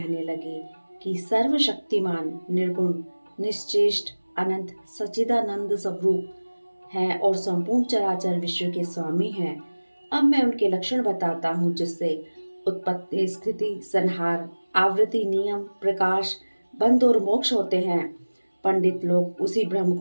लगे कि सर्वशक्तिमान, निर्गुण, निश्चेष्ट, अनंत, सच्चिदानंद स्वरूप हैं और संपूर्ण चराचर विश्व के स्वामी हैं। अब मैं उनके लक्षण बताता हूँ जिससे उत्पत्ति, स्थिति, संहार, आवृत्ति, नियम, प्रकाश, बंध और मोक्ष होते हैं। पंडित लोग उसी ब्रह्म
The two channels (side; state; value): both; inverted; correlation -1.00